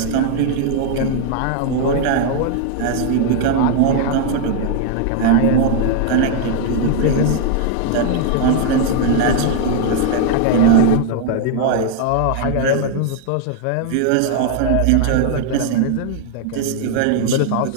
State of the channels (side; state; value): both; different; correlation 0.00